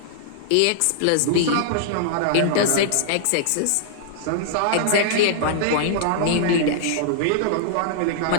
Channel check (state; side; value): different; both; correlation -0.01